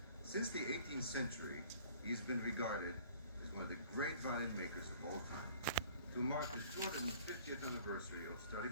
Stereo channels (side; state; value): both; inverted; correlation -0.52